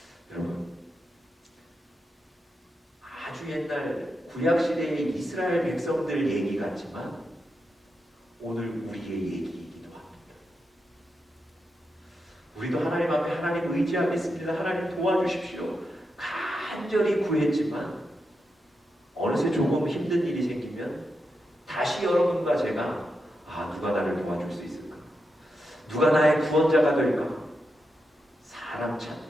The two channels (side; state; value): both; normal; correlation 0.86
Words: 여러분 아주 옛날 구약시대의 이스라엘 백성들 얘기 같지만 오늘 우리의 얘기이기도 합니다. 우리도 하나님 앞에 하나님 의지하겠습니다. 하나님 도와주십시오. 간절히 구했지만 어느새 조금 힘든 일이 생기면 다시 여러분과 제가 누가 나를 도와줄 수 있을까? 누가 나의 구원자가 될까? 사람 찾는